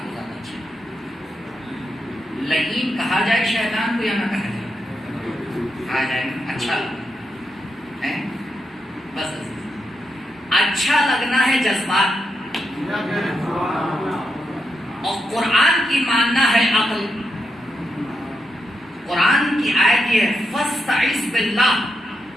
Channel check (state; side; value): normal; both; correlation 0.84